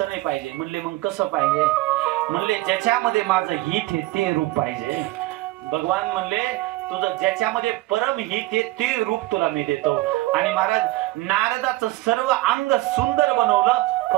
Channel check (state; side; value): quieter; left; 19.1 dB